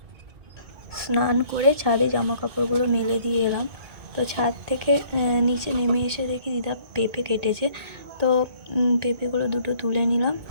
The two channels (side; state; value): left; late; 2.1 ms